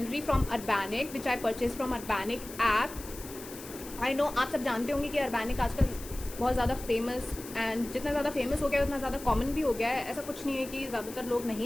from Urbanic which I purchased from Urbanic app. I know आप सब जानते होंगे कि Urbanic आजकल बहुत ज़्यादा famous and जितना ज़्यादा फेमस हो गया है उतना ज़्यादा कॉमन भी हो गया है. ऐसा कुछ नहीं है कि ज़्यादातर लोग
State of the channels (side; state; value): left; noise; hiss, 14 dB below the sound